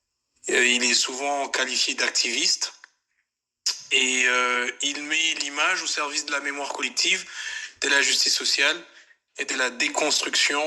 Il est souvent qualifié d'activiste et il met l'image au service de la mémoire collective, de la justice sociale et de la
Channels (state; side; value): identical; both; correlation 1.00